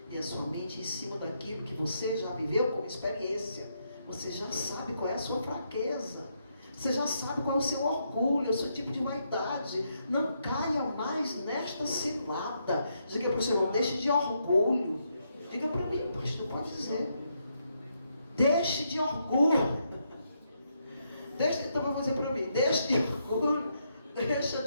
e a sua mente em cima daquilo que você já viveu como experiência. Você já sabe qual é a sua fraqueza. Você já sabe qual é o seu orgulho, o seu tipo de vaidade. Não caia mais nesta cilada. Diga para o Senhor, não deixe de orgulho. Diga para mim, pastor, pode dizer. Deixe de orgulho. Então eu vou dizer para mim, deixe de orgulho, deixa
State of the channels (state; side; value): inverted; both; correlation -0.78